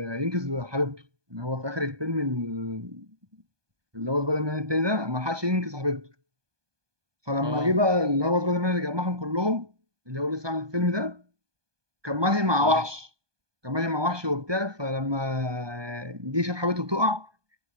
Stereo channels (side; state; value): left; late; 1.2 ms